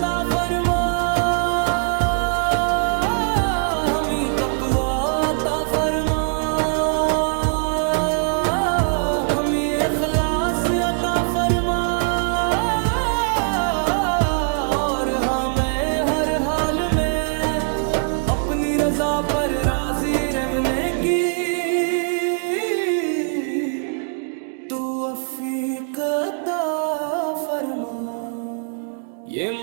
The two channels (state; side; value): silent; left; 60 dB below the other